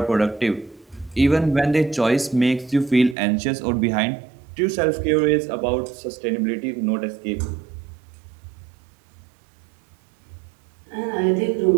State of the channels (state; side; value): drops out; left; at 3.2 s